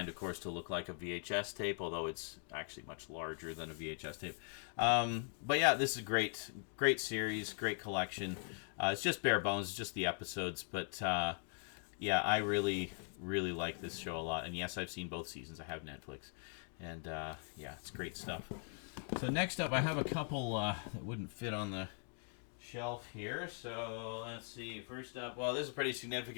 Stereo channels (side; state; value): right; silent; 51 dB below the other